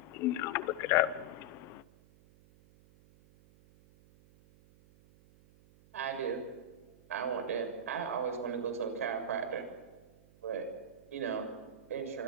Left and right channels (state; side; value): noise; right; hum, 25 dB below the sound